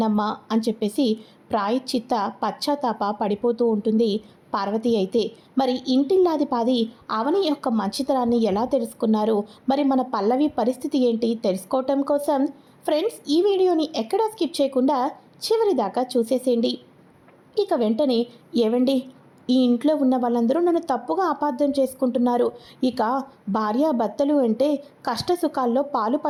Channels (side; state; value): both; identical; correlation 1.00